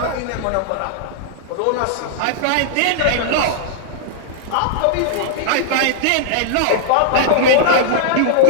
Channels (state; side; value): different; both; correlation -0.01